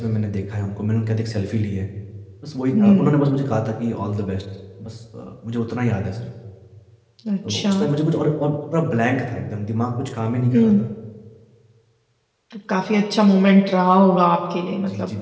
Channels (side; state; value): both; identical; correlation 1.00